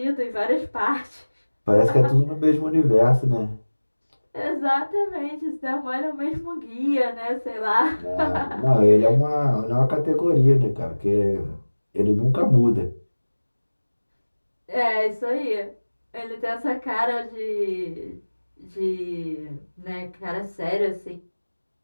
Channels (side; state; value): both; inverted; correlation -1.00